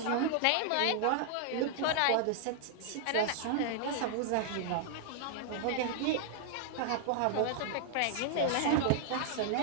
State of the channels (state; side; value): different; both; correlation -0.01